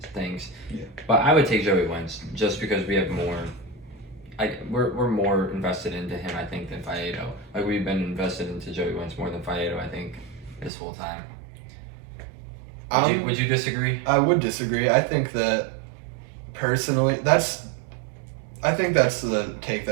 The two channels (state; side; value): drops out; left; at 10.7 s